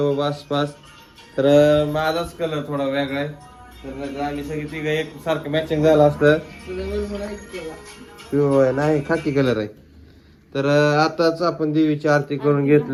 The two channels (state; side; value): identical; both; correlation 1.00